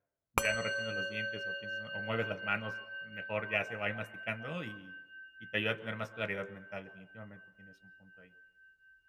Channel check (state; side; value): identical; both; correlation 1.00